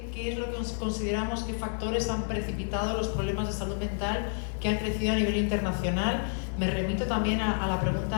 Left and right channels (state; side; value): silent; right; 58 dB below the other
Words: es lo que consideramos, qué factores han precipitado los problemas de salud mental que han crecido a nivel internacional. Me remito también a la